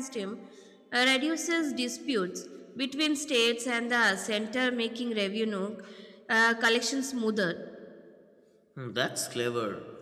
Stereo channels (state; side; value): identical; both; correlation 1.00